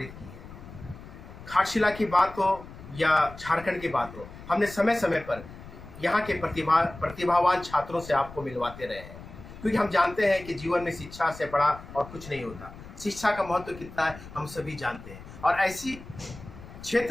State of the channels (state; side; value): noise; left; rumble, 16 dB below the sound